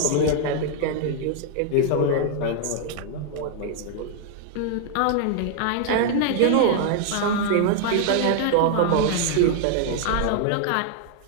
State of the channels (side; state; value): both; different; correlation 0.00